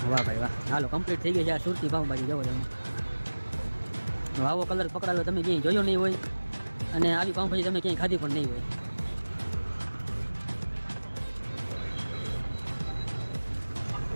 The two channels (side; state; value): both; inverted; correlation -1.00